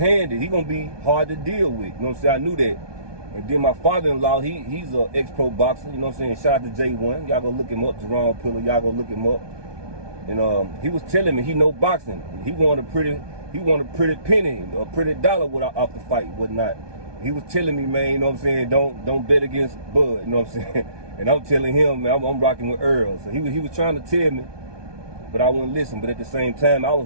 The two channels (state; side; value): late; left; 1.2 ms